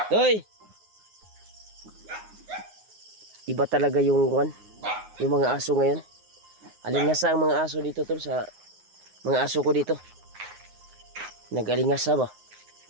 Toy! Iba talaga yung ikuan, yung mga aso ngayon. Alingasa ang mga aso dito, tol, sa mga aso ko dito. Nag-alingasa ba?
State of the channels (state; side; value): late; left; 9.6 ms